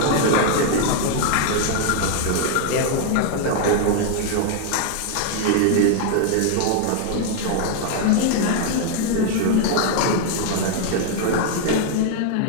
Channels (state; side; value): different; both; correlation 0.00